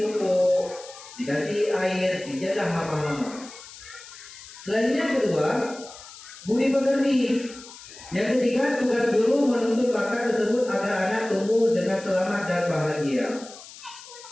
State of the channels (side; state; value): left; noise; hiss, 17 dB below the sound